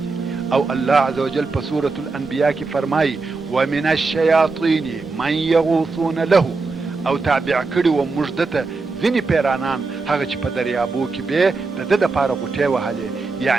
او الله عز وجل په سورة الانبیاء کې فرمایي ومن الشیاطین من یغوصون له، او تابع کړي و موږ دته ځینې پیرانان هغه چې په دریابو کې به د ده دپاره غوټې وهلې.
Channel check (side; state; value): left; quieter; 4.0 dB